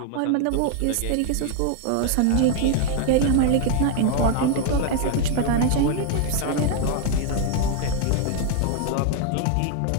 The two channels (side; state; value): both; different; correlation 0.00